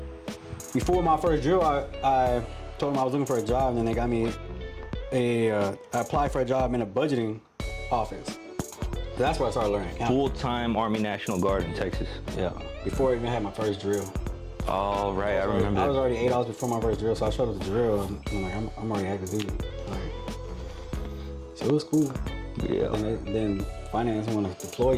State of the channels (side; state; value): both; identical; correlation 1.00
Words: before my first drill, I told them I was looking for a job, and then they got me I applied for a job in a budgeting office. So that's where I started learning accounting. Full-time Army National Guard in Texas. Yeah, before I even had my first drill. Oh, right, I remember. I was already 8 hours before my first drill, so I showed up the drill, and I'm like, I'm already active duty. Like, so it was cool. Yeah. And then finance want to deploy